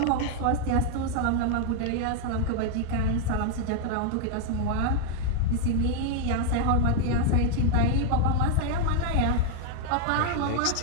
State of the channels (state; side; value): different; both; correlation 0.00